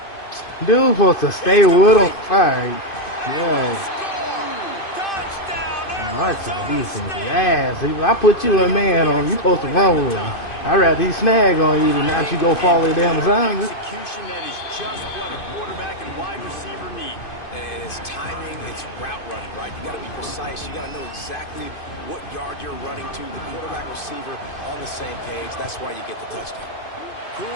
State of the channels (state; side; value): late; right; 2.5 ms